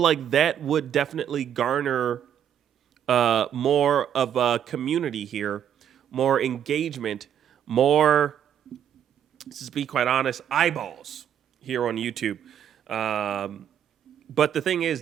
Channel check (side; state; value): left; quieter; 9.4 dB